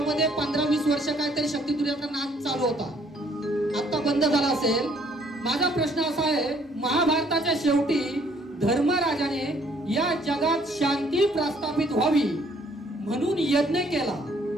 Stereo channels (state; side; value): normal; both; correlation 0.63